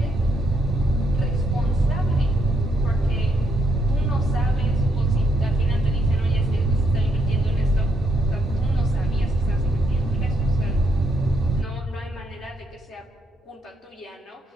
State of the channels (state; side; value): normal; both; correlation 0.75